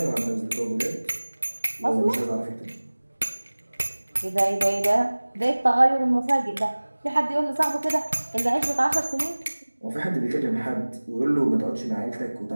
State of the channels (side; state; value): both; inverted; correlation -1.00